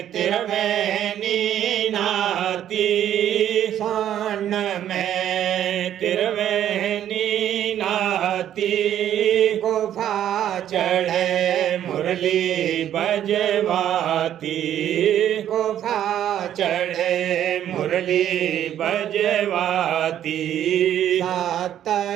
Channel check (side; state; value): left; quieter; 10.9 dB